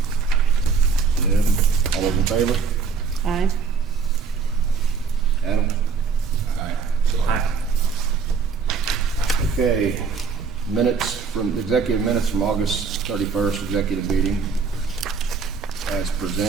Deb, all those in favor? Aye. Adam? Aye. Okay, executive minutes from August 31st executive meeting as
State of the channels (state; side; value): quieter; left; 5.4 dB